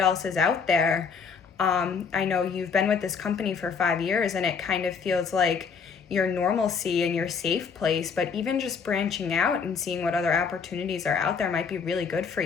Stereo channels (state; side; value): quieter; right; 5.9 dB